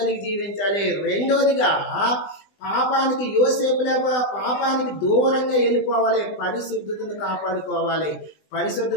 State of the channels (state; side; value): late; right; 20 ms